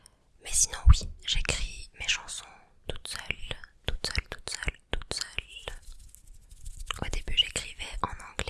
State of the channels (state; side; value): identical; both; correlation 1.00